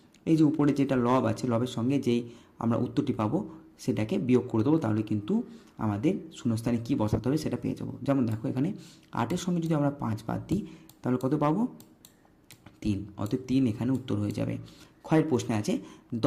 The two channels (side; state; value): both; identical; correlation 1.00